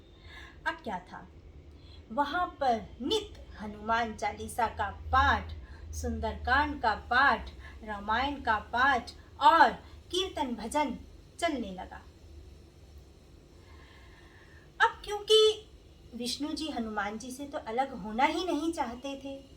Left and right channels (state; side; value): identical; both; correlation 1.00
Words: अब क्या था, वहां पर नित्य हनुमान चालीसा का पाठ, सुंदरकांड का पाठ, रामायण का पाठ और कीर्तन भजन चलने लगा। अब क्योंकि विष्णु जी हनुमान जी से तो अलग होना ही नहीं चाहते थे,